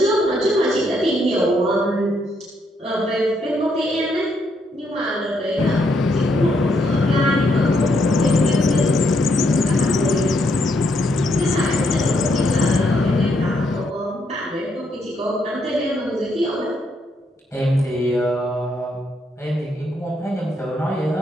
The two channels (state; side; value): normal; both; correlation 0.75